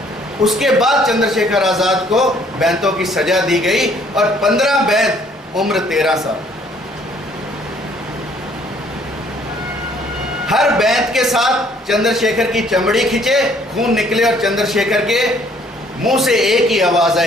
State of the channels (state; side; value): normal; both; correlation 0.61